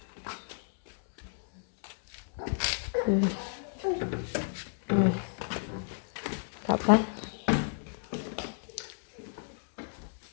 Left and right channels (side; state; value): right; silent; digital silence